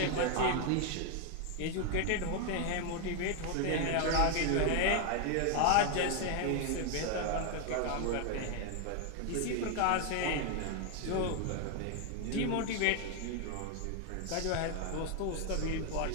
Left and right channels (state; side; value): different; both; correlation 0.00